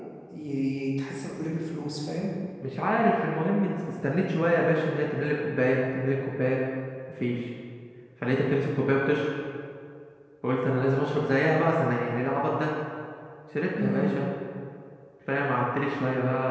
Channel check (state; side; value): identical; both; correlation 1.00